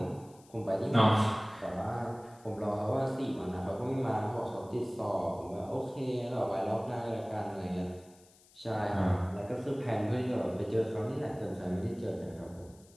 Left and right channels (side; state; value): left; noise; hiss, 27 dB below the sound